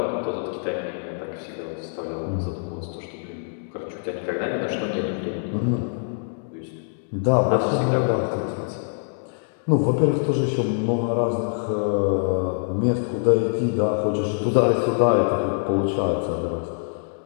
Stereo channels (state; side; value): silent; right; digital silence